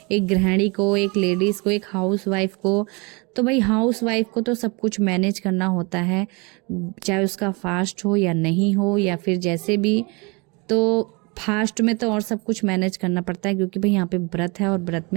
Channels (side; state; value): left; quieter; 29.0 dB